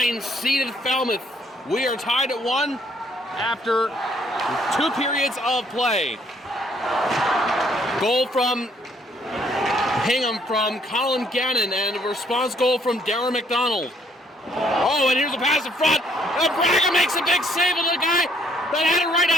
seeded Falmouth. We are tied at 1 after 2 periods of play. Goal from Hingham from Colin Gannon, and a response goal from Darren McDonald. Oh, and here's a pass in front. Braga makes a big save, and the guy that had it right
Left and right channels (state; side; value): normal; both; correlation 0.66